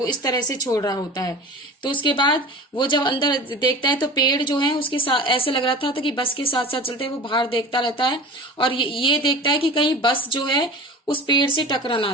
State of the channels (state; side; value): normal; both; correlation 0.37